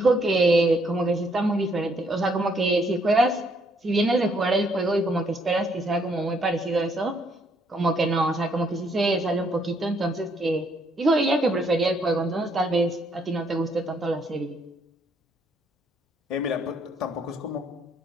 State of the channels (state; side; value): normal; both; correlation 0.70